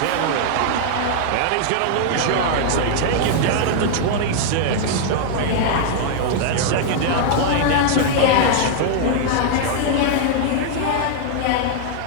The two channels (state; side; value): different; both; correlation -0.01